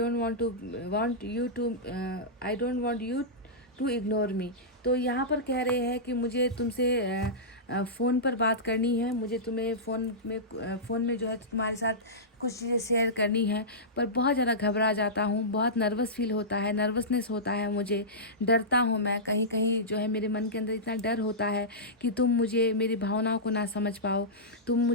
want you to ignore me. तो यहाँ पर कह रहे हैं कि मुझे तुमसे फ़ोन पर बात करनी है, मुझे तुम्हें फ़ोन में जो है तुम्हारे साथ कुछ चीज़ें शेयर करनी है, पर बहुत ज़्यादा घबरा जाता हूँ, बहुत नर्वस फील होता है, नर्वसनेस होता है मुझे, डरता हूँ मैं। कहीं कहीं जो है मेरे मन के अंदर इतना डर होता है कि तुम मुझे, मेरी भावनाओं को ना समझ पाओ, तुम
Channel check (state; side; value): normal; both; correlation -0.15